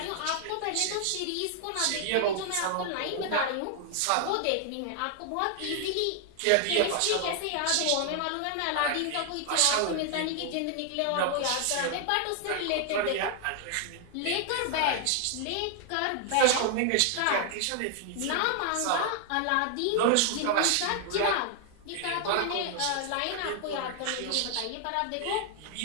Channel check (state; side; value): different; both; correlation 0.00